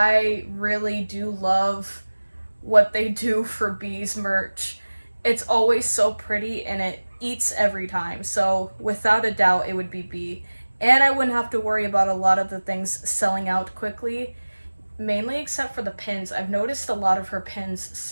really do love what they do for B's merch. It's always so pretty and it eats every time. So without a doubt, it would be B. And I wouldn't have to worry about a lot of the things selling out quickly, mainly except for the pins. I've noticed a lot of her pins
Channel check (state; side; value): inverted; both; correlation -1.00